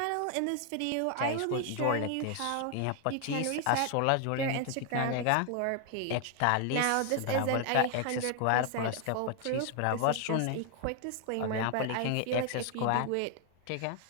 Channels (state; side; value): different; both; correlation 0.00